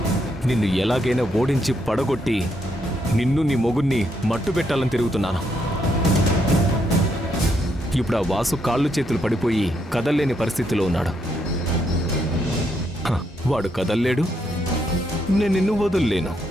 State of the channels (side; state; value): both; normal; correlation 0.77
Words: నిన్ను ఎలాగైనా ఓడించి పడగొట్టి నిన్ను నీ మొగుణ్ణి మట్టు పెట్టాలని తిరుగుతున్నాను. ఇప్పుడు ఆ వాసు కాళ్ళు చేతులు పడిపోయి కదల్లేని పరిస్థితిలో ఉన్నాడు. వాడు కదల్లేడు, నేను నిన్ను వదుల్లేను.